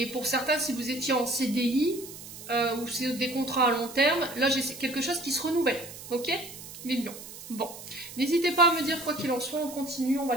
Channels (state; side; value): noise; right; hiss, 14 dB below the sound